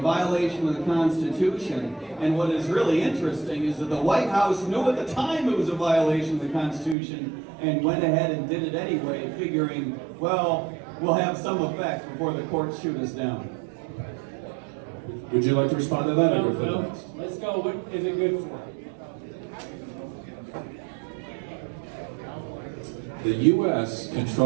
of the Constitution. And what is really interesting is that the White House knew at the time it was a violation of the Constitution and went ahead and did it anyway, figuring, well, we'll have some effect before the courts shoot us down. Would you like to respond to that? or No, go for the no. next? Let's go. What is it good for? The U.S.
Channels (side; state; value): left; drops out; at 7.0 s